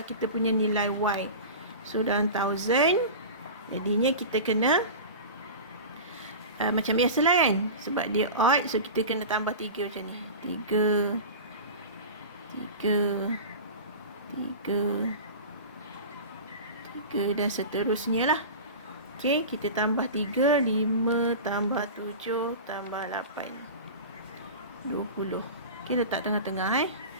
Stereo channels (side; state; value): both; inverted; correlation -0.31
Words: kita punya nilai Y. So dalam 1000, jadinya kita kena macam biasa lah kan, sebab dia odd, so kita kena tambah 3 macam ni. 3 dan seterusnya lah. Okay, kita tambah 3, 5 tambah 7 tambah 8, 20. Okay, letak tengah-tengah